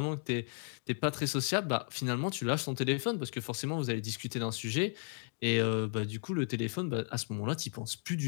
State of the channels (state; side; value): silent; right; 55 dB below the other